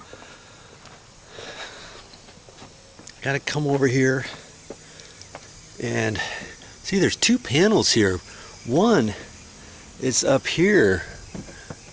Got to come over here and see there's two panels here. One is up here,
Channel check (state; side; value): identical; both; correlation 1.00